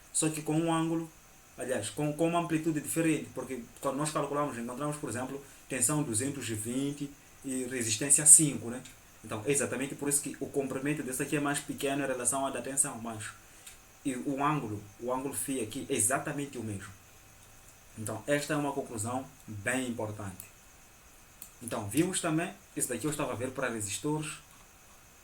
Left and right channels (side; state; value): both; identical; correlation 1.00